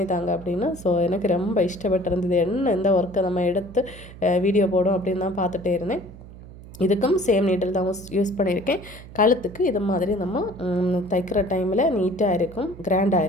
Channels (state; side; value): noise; right; hum, 17 dB below the sound